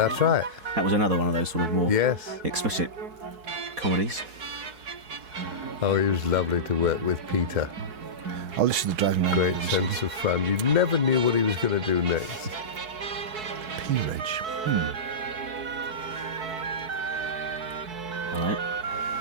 right. That was another one of those sort of more Yes. explicit comedies. Oh, he was lovely to work with, Peter. I'll listen to Driving Around. Great sense of fun. You never knew what he was going to do next. Peerage. All right.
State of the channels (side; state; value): left; late; 4.6 ms